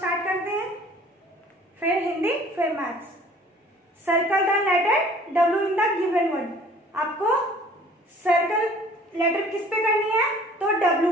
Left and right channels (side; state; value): both; normal; correlation 0.52